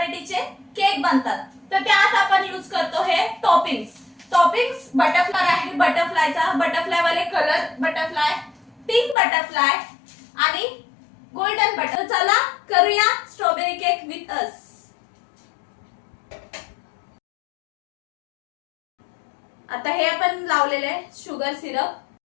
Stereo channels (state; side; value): drops out; right; at 9.2 s